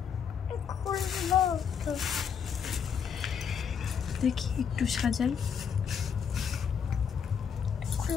দেখি একটু সাজাই।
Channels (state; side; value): quieter; right; 7.2 dB